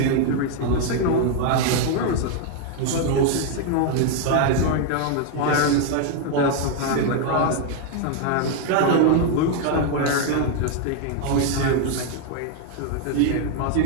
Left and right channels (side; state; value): both; different; correlation 0.00